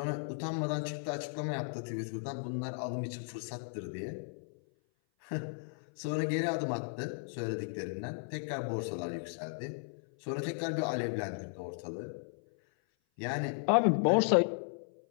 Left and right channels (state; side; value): silent; right; 54 dB below the other